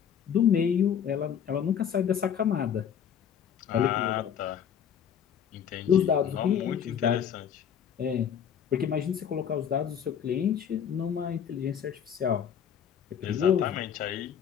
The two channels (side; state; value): right; quieter; 8.4 dB